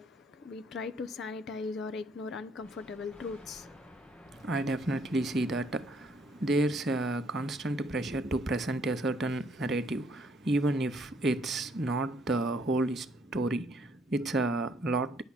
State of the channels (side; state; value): both; normal; correlation 0.66